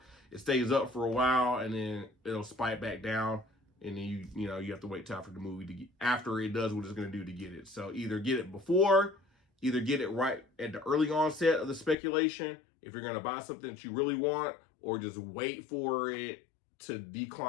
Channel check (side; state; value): right; drops out; at 12.0 s